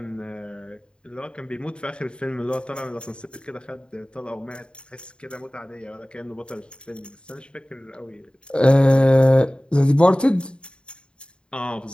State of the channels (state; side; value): late; right; 0.052 ms